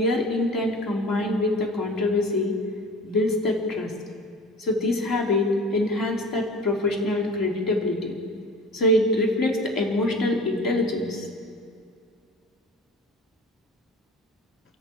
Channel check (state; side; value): normal; both; correlation 0.39